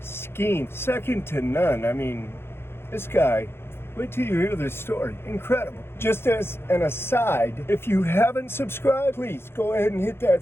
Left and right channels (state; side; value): late; right; 0.11 ms